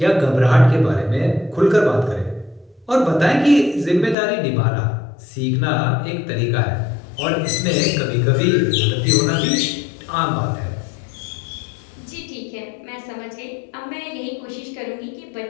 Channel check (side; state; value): right; drops out; at 4.2 s